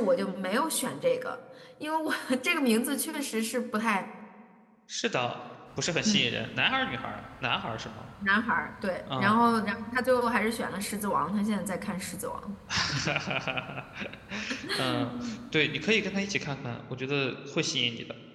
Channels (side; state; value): both; identical; correlation 1.00